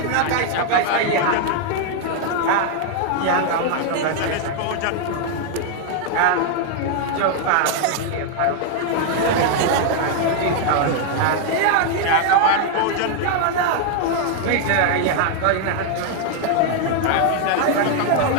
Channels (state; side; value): different; both; correlation 0.00